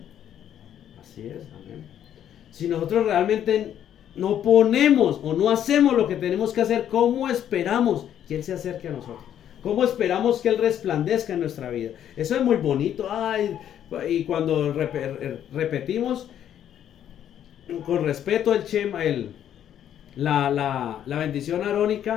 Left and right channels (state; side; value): quieter; right; 10.2 dB